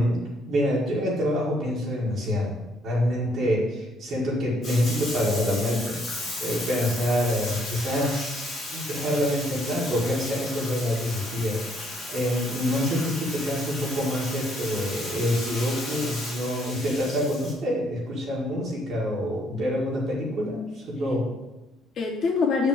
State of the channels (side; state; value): both; normal; correlation 0.68